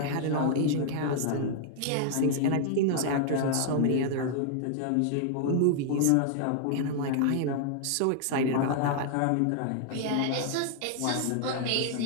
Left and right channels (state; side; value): different; both; correlation 0.00